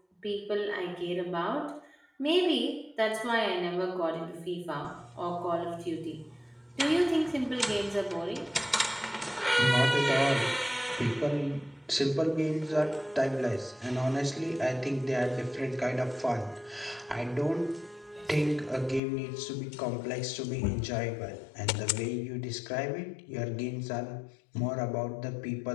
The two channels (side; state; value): right; drops out; at 19.0 s